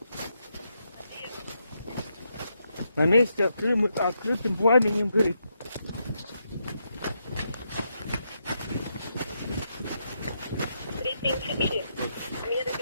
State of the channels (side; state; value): both; inverted; correlation -0.81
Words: На месте открытым пламенем горит. Меры